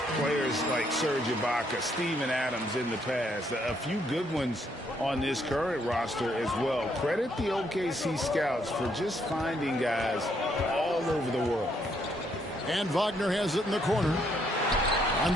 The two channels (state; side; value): normal; both; correlation 0.72